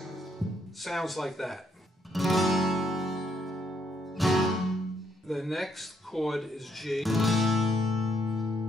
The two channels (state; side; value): normal; both; correlation 0.72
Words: Sounds like that. The next chord is G.